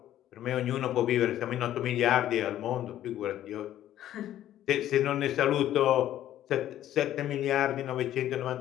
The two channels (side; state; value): right; quieter; 12.4 dB